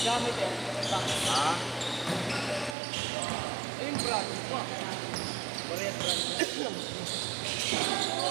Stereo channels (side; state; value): left; drops out; at 2.8 s